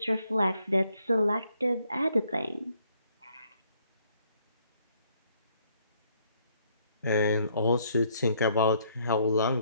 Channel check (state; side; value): inverted; both; correlation -0.68